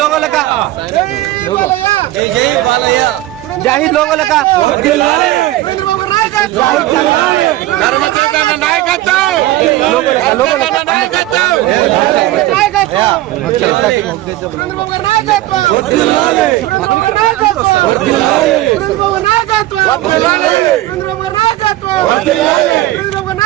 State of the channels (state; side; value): quieter; left; 16.0 dB